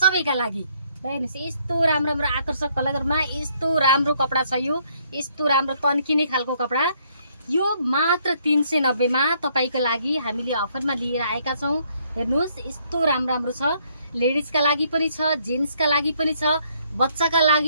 सबैका लागि। हेर्नुस् यस्तो राम्रो राम्रो आकर्षक कलरमा यस्तो राम्रो कपडा छ, यो यस्तो राम्रो तन्किने खालको कपडा यो मात्र 390 मा तपाईको लागि हामीले अफरमा लिएर आएका छौं। हेर्नुस् यस्तो राम्रो राम्रो छ, लेडिजका लागि पनि छ, जेन्ट्सका लागि पनि छ, बच्चाका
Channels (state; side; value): inverted; both; correlation -0.68